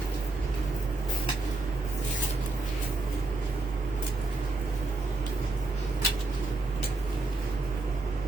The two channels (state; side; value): quieter; left; 3.1 dB